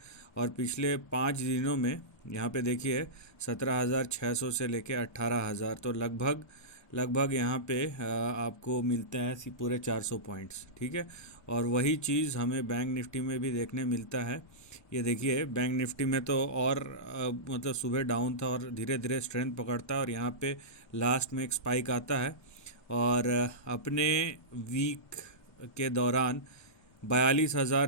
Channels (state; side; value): late; right; 1.2 ms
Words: और पिछले 5 दिनों में यहाँ पे देखिए 17,600 से लेके 18,000, तो लगभग लगभग यहाँ पे आपको मिलता है पूरे 400 पॉइंट्स। ठीक है। और वही चीज़ हमें बैंक निफ्टी में भी देखने मिलता है। ये देखिए बैंक निफ्टी में तो और मतलब सुबह डाउन था और धीरे धीरे स्ट्रेंथ पकड़ता है और यहाँ पे लास्ट में एक स्पाइक आता है। और अपने वीक के दौरान